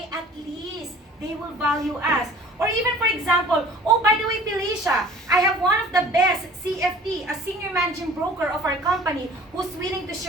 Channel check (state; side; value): normal; both; correlation 0.48